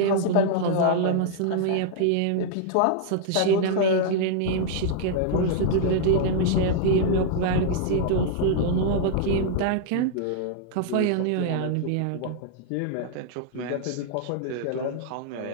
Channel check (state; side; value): different; both; correlation -0.01